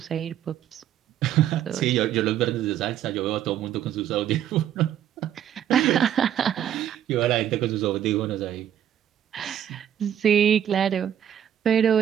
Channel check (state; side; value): quieter; left; 10.3 dB